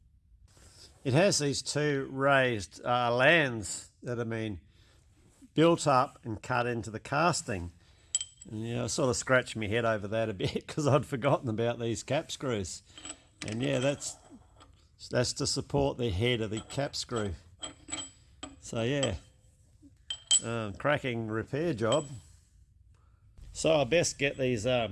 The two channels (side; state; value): both; identical; correlation 1.00